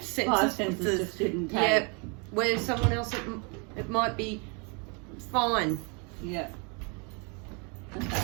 senses. Five senses just didn't take. Yeah, where someone else it might be fine. Yeah. Okay.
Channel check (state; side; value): quieter; left; 34.1 dB